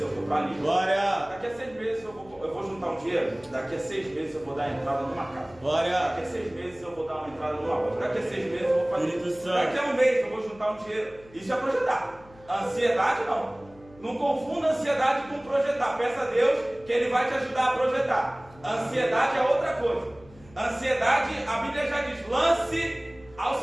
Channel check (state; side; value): noise; left; hum, 24 dB below the sound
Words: eu vou para ali. Glória. Daqui a 6 meses eu vou juntar um dinheiro. Daqui a 6 meses eu vou dar entrada numa casa. Glória. Daqui a 6 meses eu vou dar uma entrada numa loja. Daqui a 6 meses eu vou fazer. Espírito Santo. Daqui a um mês eu vou juntar um dinheiro. Isso é projetar. Ansiedade não. Não confunda ansiedade com projetar. Peça a Deus que Ele vai te ajudar a projetar. Ansiedade é outra coisa. Ansiedade, a Bíblia já diz, lance ao